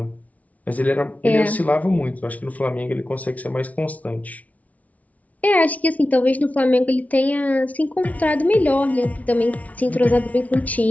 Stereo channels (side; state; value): right; late; 0.070 ms